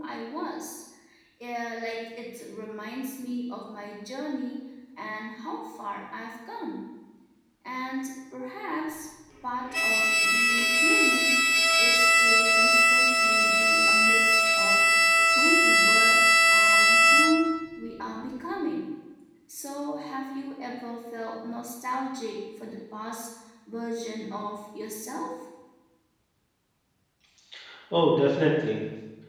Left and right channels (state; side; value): identical; both; correlation 1.00